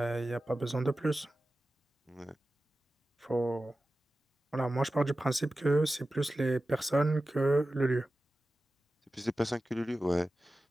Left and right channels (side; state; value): both; normal; correlation 0.95